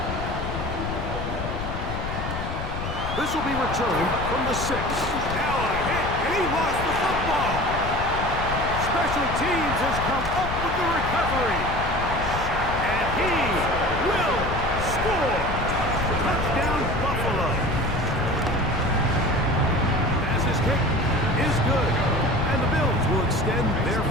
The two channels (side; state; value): left; noise; rumble, 5 dB below the sound